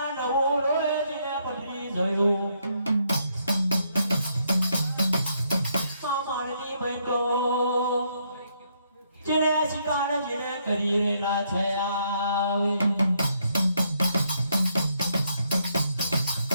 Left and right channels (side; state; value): both; inverted; correlation -0.74